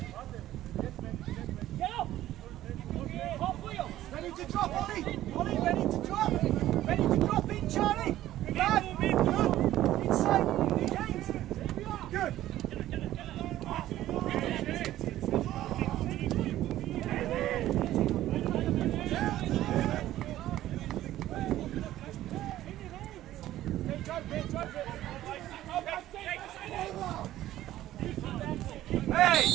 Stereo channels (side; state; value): left; quieter; 13.9 dB